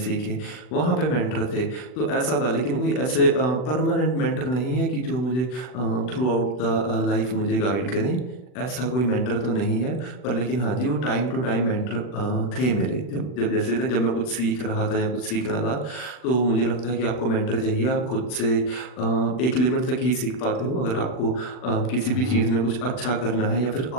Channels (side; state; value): right; late; 40 ms